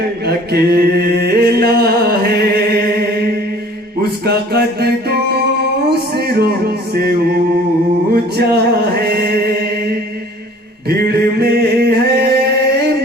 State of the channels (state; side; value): normal; both; correlation 0.50